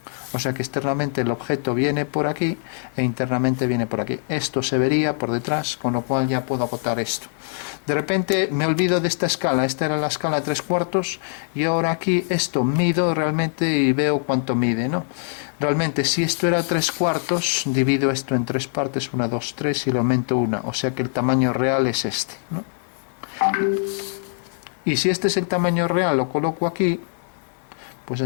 O sea que externamente el objeto viene por aquí e internamente viene por aquí. Esto se vería por detrás, con lo cual ya puedo acotar esto. De repente me olvido de esta escala, esta era la escala 3/4 y ahora aquí esto mido realmente y veo cuánto mide, ¿no? Realmente si esto era 3/4, divido esto en 3 partes, 1, 2, 3 y le aumento 1, o sea que el tamaño real es este, ¿no? Y si este es el tamaño real, lo coloco aquí, pues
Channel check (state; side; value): silent; right; digital silence